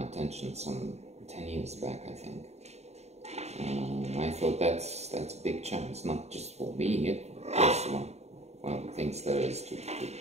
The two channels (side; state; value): left; late; 0.32 ms